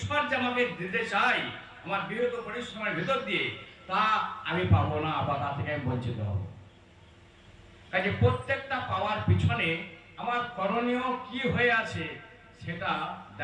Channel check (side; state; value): both; identical; correlation 1.00